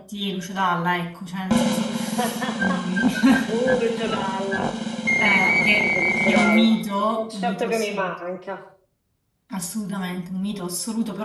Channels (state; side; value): identical; both; correlation 1.00